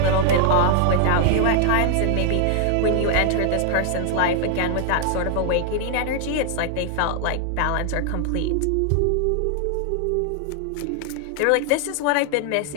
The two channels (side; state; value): both; different; correlation 0.00